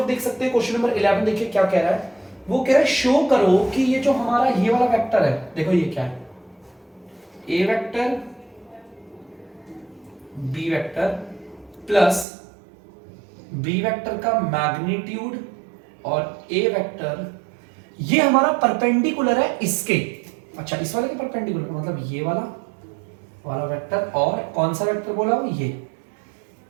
देख सकते हैं क्वेश्चन नंबर 11 देखिए क्या कह रहा है, वो कह रहा है शो करो कि ये जो हमारा ये वाला वेक्टर है, देखो ये क्या है, A vector B vector plus B vector का मैग्नीट्यूड और ए वेक्टर, ये हमारा परपेंडिकुलर है इसके, अच्छा इस वाले के परपेंडिकुलर मतलब ये वाला वेक्टर, और कौन सा वेक्टर बोला वो, ये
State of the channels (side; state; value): left; drops out; at 12.2 s